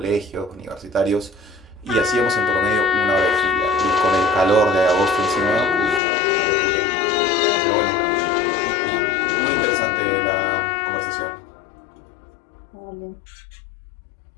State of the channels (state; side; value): drops out; right; at 6.0 s